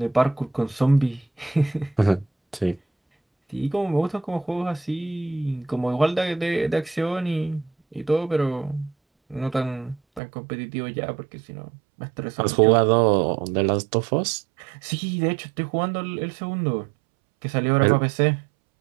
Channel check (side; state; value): left; drops out; at 10.2 s